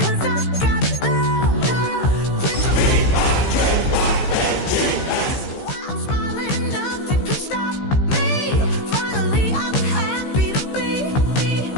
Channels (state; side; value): late; right; 15 ms